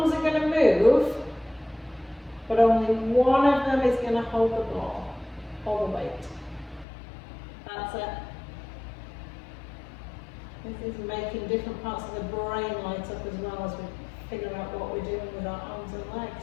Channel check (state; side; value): drops out; right; at 6.9 s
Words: are going to move, but only one of them is going to hold the ball, hold the weight. That's it. This is making different parts of the brain light up as well as we figure out what we're doing with our arms and